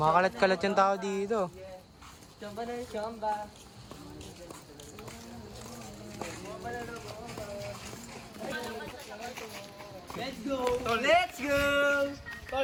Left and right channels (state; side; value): identical; both; correlation 1.00